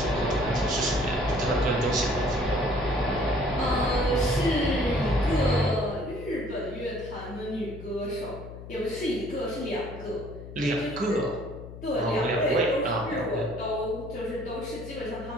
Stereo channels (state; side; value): noise; left; hum, 13 dB below the sound